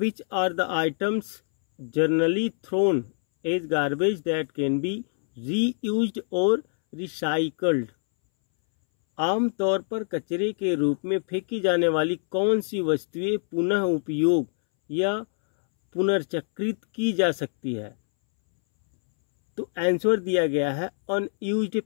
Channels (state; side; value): silent; right; 62 dB below the other